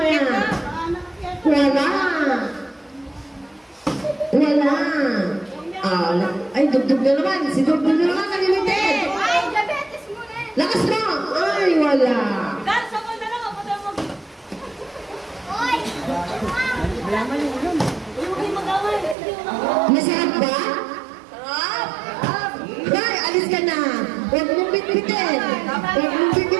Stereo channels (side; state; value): left; drops out; at 19.2 s